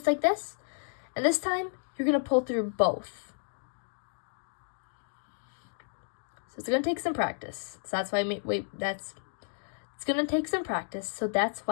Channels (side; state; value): right; silent; digital silence